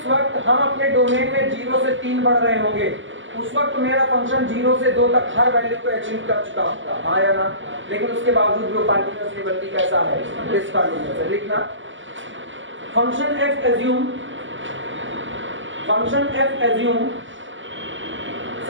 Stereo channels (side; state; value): left; late; 0.55 ms